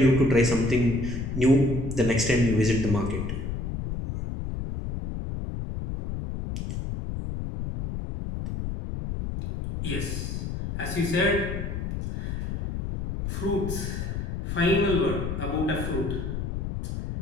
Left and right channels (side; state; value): left; noise; rumble, 4 dB below the sound